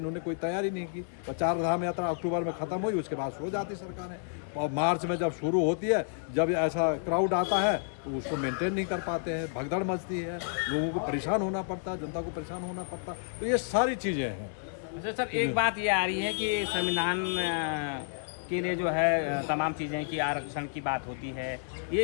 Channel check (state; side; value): silent; right; digital silence